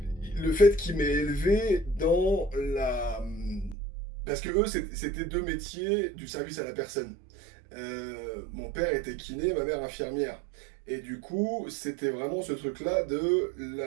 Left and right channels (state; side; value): drops out; left; at 3.8 s